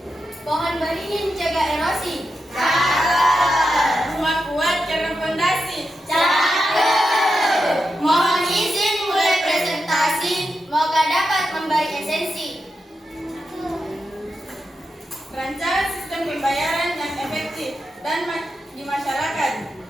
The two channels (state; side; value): normal; both; correlation 0.88